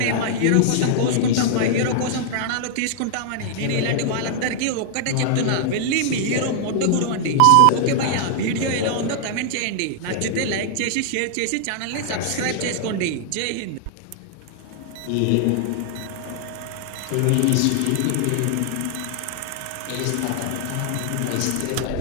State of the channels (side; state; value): both; different; correlation -0.01